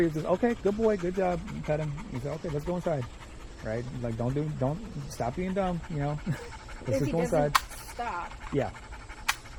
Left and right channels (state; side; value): identical; both; correlation 1.00